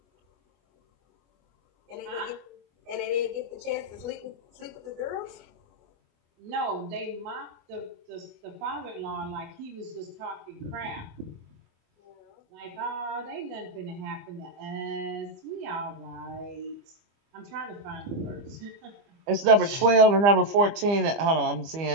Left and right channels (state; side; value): late; left; 25 ms